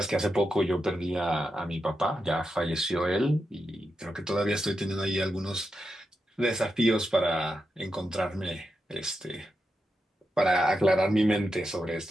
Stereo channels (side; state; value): both; normal; correlation 0.87